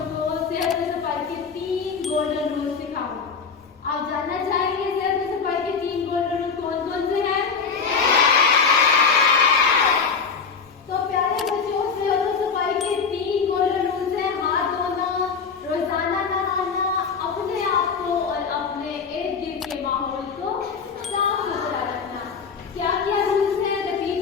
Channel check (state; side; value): quieter; right; 5.6 dB